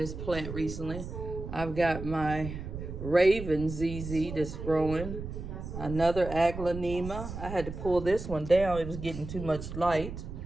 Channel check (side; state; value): right; noise; rumble, 8 dB below the sound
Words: plant recently. I've got my Raven ZZ that's growing. Another aglaonema. I had to pull this one down. It was getting too much light.